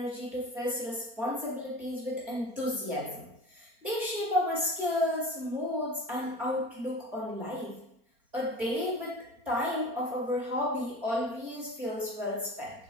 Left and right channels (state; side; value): late; left; 4.3 ms